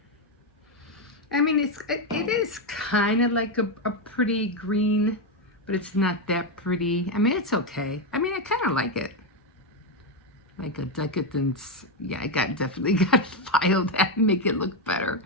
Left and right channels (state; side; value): normal; both; correlation 0.06